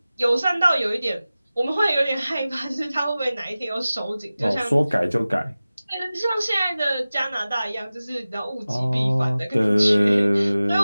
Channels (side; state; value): both; inverted; correlation -0.97